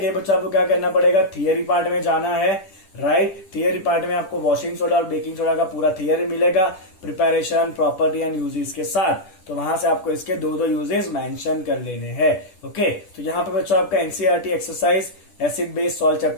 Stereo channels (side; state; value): right; late; 10 ms